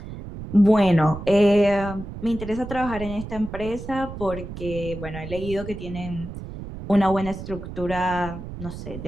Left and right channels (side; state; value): right; noise; rumble, 10 dB below the sound